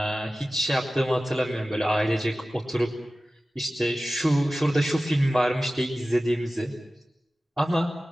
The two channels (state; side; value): normal; both; correlation 0.95